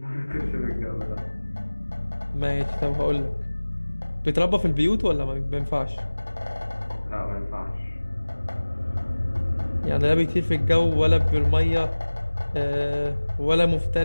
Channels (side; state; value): both; inverted; correlation -1.00